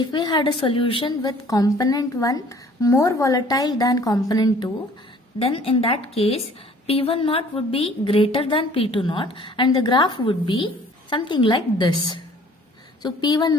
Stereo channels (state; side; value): normal; both; correlation 0.54